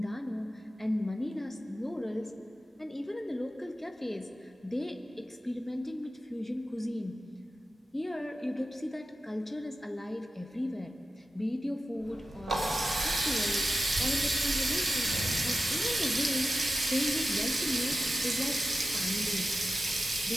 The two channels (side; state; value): both; normal; correlation 0.91